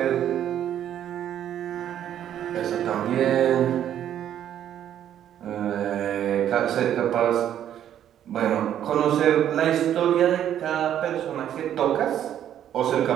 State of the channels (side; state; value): left; quieter; 10.5 dB